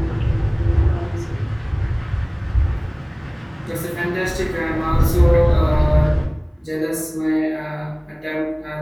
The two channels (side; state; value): both; identical; correlation 1.00